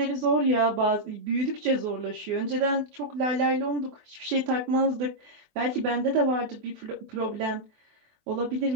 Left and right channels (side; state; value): left; late; 24 ms